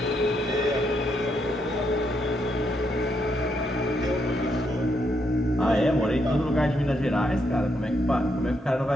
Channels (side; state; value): both; normal; correlation 0.78